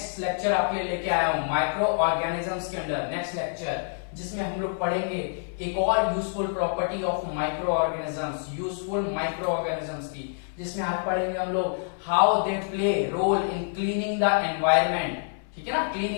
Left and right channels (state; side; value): silent; right; 60 dB below the other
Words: लेक्चर आपके लिए लेके आया हूँ माइक्रो ऑर्गेनिजम्स के अंडर नेक्स्ट लेक्चर, जिसमें हम लोग पढ़ेंगे एक और useful property of micro organisms, useful micro organisms की, जिसमें आज पढ़ेंगे हम लोग how they play role in cleaning the environment. ठीक है ना,